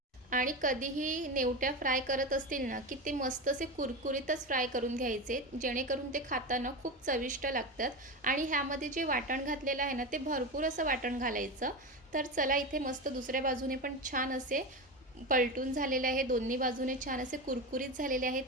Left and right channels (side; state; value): both; normal; correlation 0.21